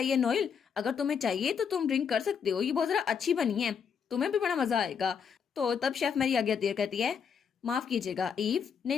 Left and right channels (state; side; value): quieter; right; 6.9 dB